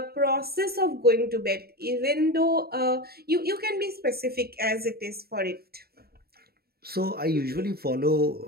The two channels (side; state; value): left; late; 0.45 ms